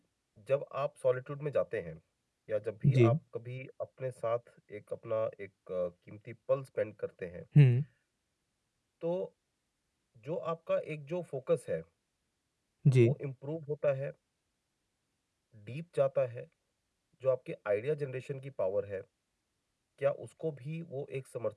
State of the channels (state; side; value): identical; both; correlation 1.00